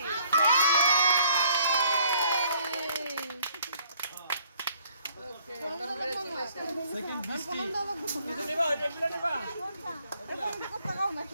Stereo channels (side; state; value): both; inverted; correlation -0.63